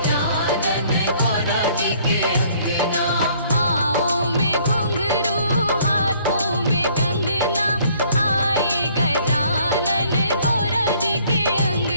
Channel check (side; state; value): both; inverted; correlation -0.60